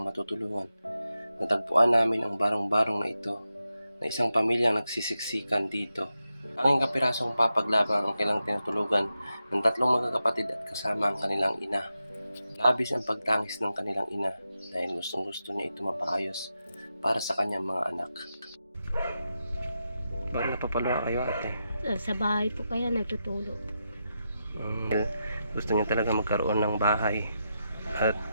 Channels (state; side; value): inverted; both; correlation -0.88